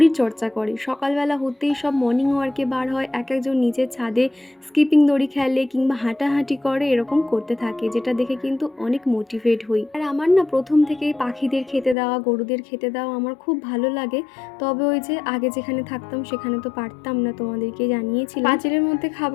চর্চা করে, সকালবেলা হতেই সব মর্নিং ওয়ার্কে বার হয়, এক একজন নিজের ছাদে স্কিপিং দড়ি খেলে কিংবা হাঁটাহাঁটি করে, এরকম করতে থাকে, যেটা দেখে কিন্তু অনেক মোটিভেট হই। আর আমার না প্রথম থেকেই পাখিদের খেতে দেওয়া, গরুদের খেতে দেওয়া আমার খুব ভালো লাগে। তবে ওই যে আগে যেখানে থাকতাম সেখানে তো পারতাম না, তোমাদেরকে জানিয়েছিলাম। পাঁচিলের মধ্যে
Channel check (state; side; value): drops out; right; at 12.0 s